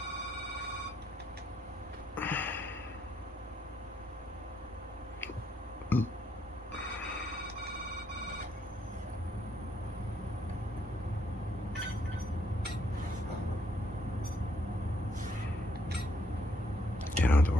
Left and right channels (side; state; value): both; normal; correlation 0.72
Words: don't have to